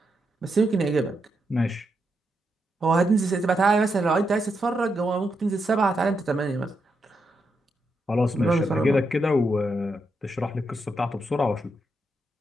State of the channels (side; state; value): both; normal; correlation 0.83